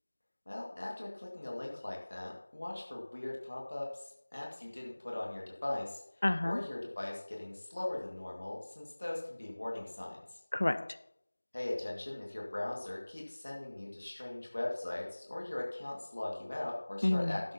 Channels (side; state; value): both; inverted; correlation -1.00